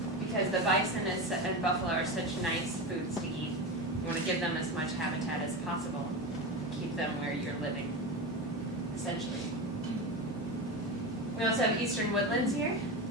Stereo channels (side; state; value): both; normal; correlation 0.21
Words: the bison and buffalo are such nice foods to eat. You want to give them as much habitat as possible, keep them where you're living, essentially. We also have eastern woodlands here.